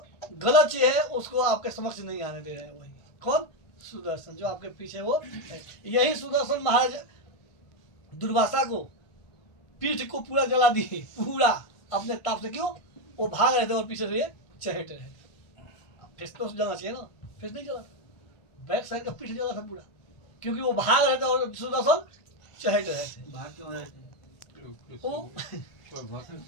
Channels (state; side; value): late; right; 1.5 ms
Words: गलत चीज है उसको आपके समक्ष नहीं आने दे रहे हैं। वही कौन, सुदर्शन जो आपके पीछे वो है। यही सुदर्शन महाराज दुर्वासा को पीठ को पूरा जला दिए, पूरा अपने ताप से। क्यों, वो भाग रहे थे और पीछे से ये चहट रहे थे। फेस तो जलना चाहिए ना, फेस नहीं जला, बैक साइड का पीठ जला था पूरा, क्योंकि वो भाग रहे थे और सुदर्शन चहट रहे थे। भाग क्यों रहे थे?